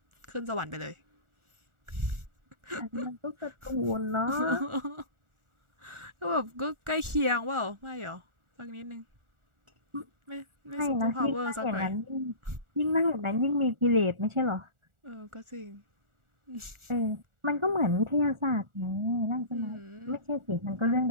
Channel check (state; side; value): late; left; 1.4 ms